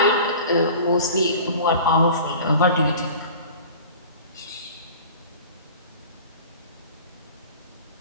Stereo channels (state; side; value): inverted; both; correlation -0.42